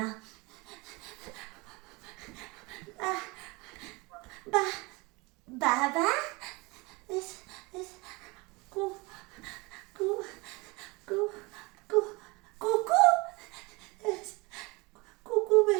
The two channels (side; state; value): left; quieter; 25.9 dB